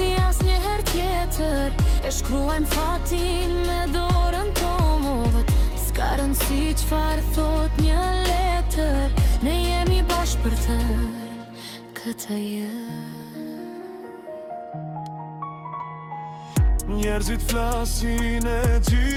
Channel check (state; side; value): identical; both; correlation 1.00